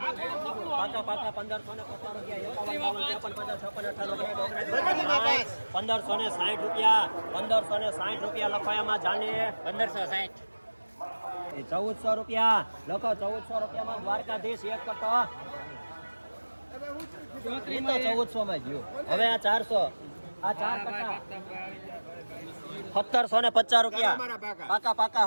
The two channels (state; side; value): inverted; both; correlation -1.00